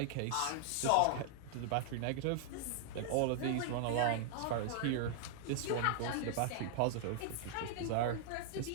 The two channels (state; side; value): different; both; correlation -0.01